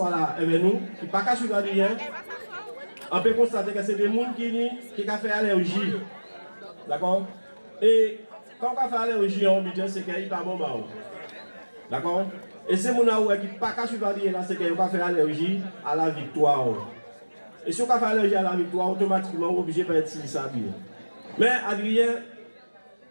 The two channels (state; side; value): inverted; both; correlation -1.00